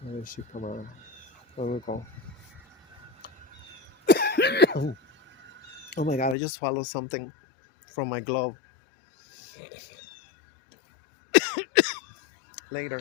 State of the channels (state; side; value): drops out; right; at 6.4 s